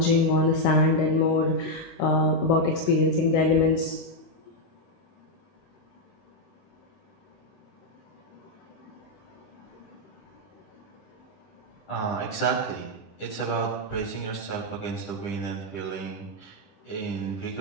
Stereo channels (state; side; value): late; right; 10 ms